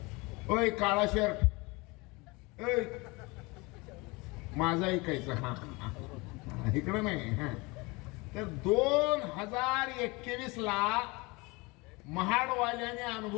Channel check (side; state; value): right; quieter; 25.4 dB